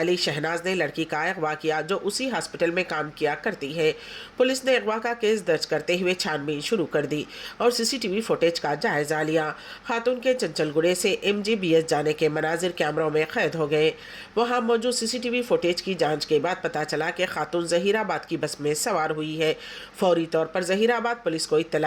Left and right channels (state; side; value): identical; both; correlation 1.00